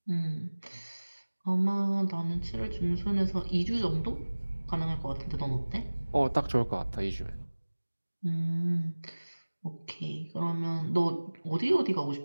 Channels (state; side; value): inverted; both; correlation -1.00